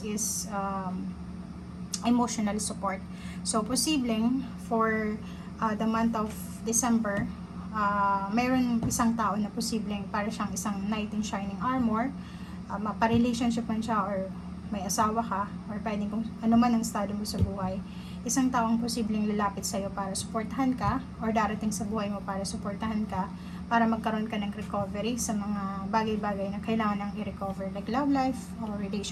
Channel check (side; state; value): both; identical; correlation 1.00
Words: is emotional support. So, posibleng for the month of December, mayroon isang tao na posibleng para siyang isang knight in shining armor. Pa-relationship man siya, or may asawa ka, or pwedeng kung ano man ang estado mo sa buhay. Isang taong posibleng lalapit sa'yo para suportahan ka, or darating sa buhay mo para suportahan ka, para magkaroon ka ng recovery sa mga bagay-bagay na kailangan nang i-recover, like love life or